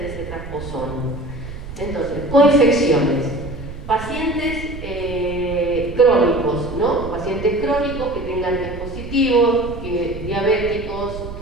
ese transposón. Entonces, coinfecciones. Pacientes crónicos, ¿no? Pacientes crónicos que tengan dispositivos, diabéticos,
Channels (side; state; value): right; noise; rumble, 11 dB below the sound